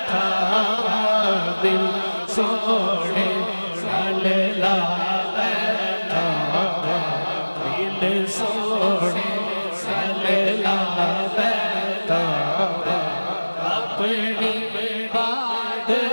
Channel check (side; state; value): both; inverted; correlation -1.00